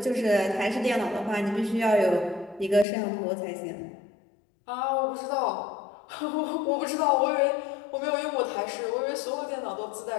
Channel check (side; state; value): right; drops out; at 2.9 s